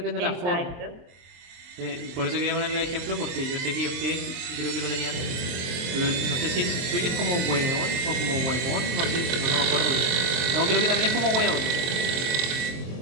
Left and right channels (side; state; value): left; late; 23 ms